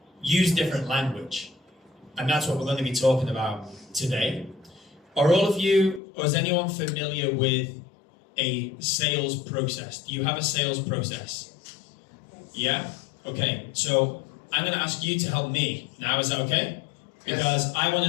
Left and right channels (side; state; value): right; drops out; at 6.0 s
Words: use different language. And that's what we're going to be talking about today. Are all of you, or is anyone familiar with a sales process? Do you have a sales process? Yeah? Okay, so I'm going to ask you to help me now, is that okay? Because I want